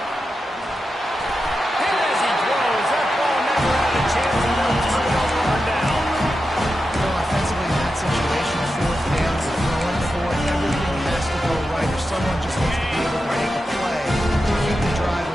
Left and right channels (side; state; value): both; normal; correlation 0.90